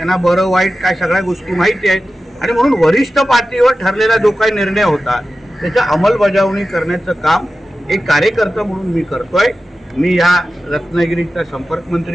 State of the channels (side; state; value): both; normal; correlation 0.94